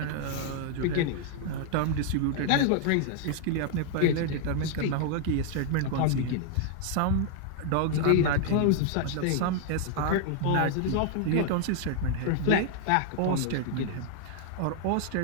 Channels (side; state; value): both; different; correlation 0.00